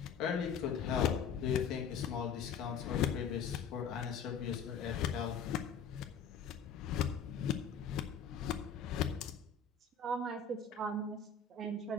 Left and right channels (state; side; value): quieter; right; 6.1 dB